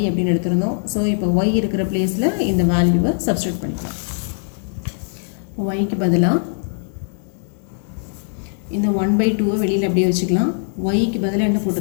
அப்படின்னு எடுத்திருந்தோம். ஸோ இப்போ ஒய் இருக்கிற பிளேஸில் இந்த வேல்யூவை சப்ஸ்டியூட் பண்ணிக்கலாம். ஒய்க்கு பதிலாக இந்த 1 by 2 வெளியில் அப்படியே வச்சுக்கலாம். ஒய்க்கு பதிலாக என்ன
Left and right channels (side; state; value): right; silent; 65 dB below the other